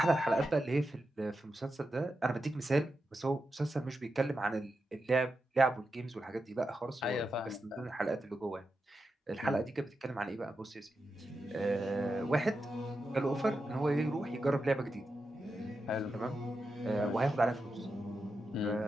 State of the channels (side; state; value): both; normal; correlation 0.89